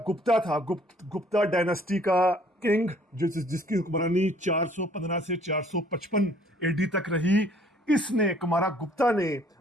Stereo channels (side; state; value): both; normal; correlation 0.59